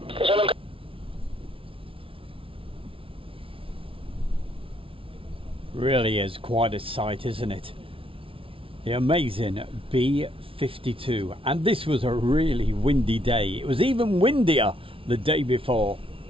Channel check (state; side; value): late; left; 0.26 ms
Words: Really is quite a sight, isn't it? The amazing B-52. And this was a really windy day. It was even windier the day before.